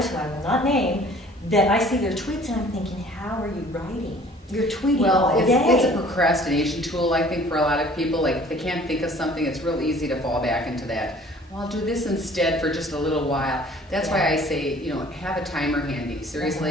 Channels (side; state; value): both; normal; correlation 0.52